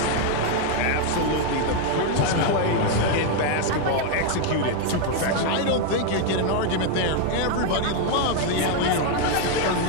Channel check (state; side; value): different; both; correlation 0.01